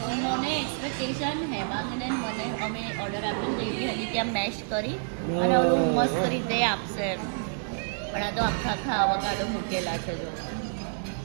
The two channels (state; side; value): silent; left; 59 dB below the other